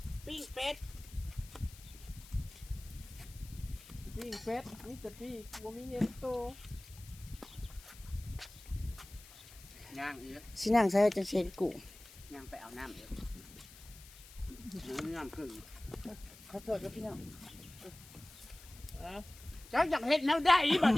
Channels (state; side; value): noise; left; hiss, 19 dB below the sound